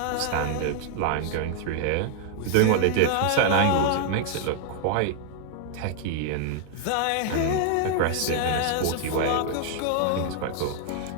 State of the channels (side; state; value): both; different; correlation 0.00